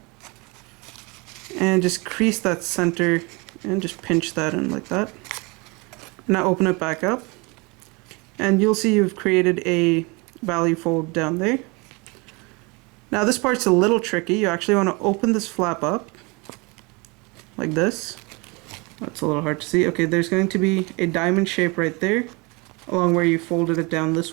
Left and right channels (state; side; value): quieter; left; 27.9 dB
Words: And just crease that center and just pinch that in like that. Now open it back up. And you'll see you've created a value fold down there. Now this part's a little tricky. You actually want to open this flap up like this. That's a little hard to see. Okay, there's going to be a diamond shape right there along where you folded it down this